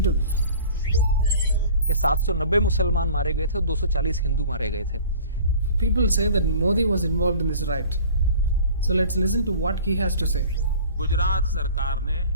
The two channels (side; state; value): both; inverted; correlation -0.44